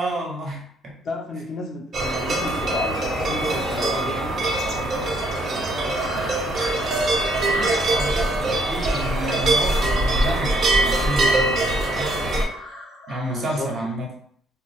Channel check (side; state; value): both; normal; correlation 0.69